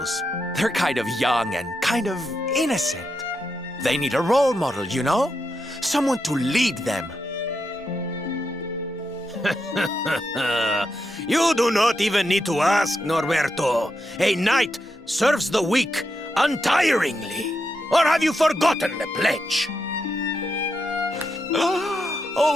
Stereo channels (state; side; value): normal; both; correlation 0.84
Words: They're kind of young and kind of innocent. They need a role model, you know? Someone to lead them. You do not even need to ask, Norberto. A knight serves the weak untiringly. Or have you forgotten the pledge?